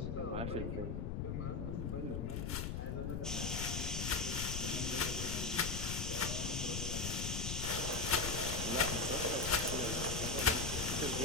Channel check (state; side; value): noise; left; rumble, 2 dB below the sound